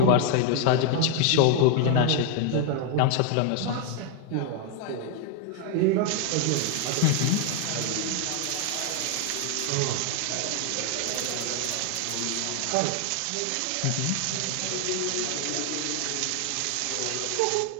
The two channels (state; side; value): different; both; correlation 0.00